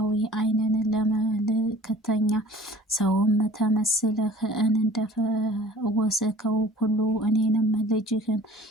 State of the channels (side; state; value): both; normal; correlation 0.47